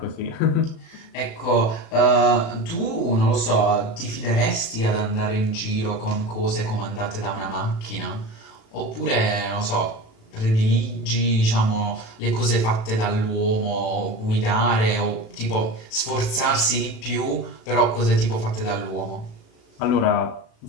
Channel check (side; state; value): right; late; 36 ms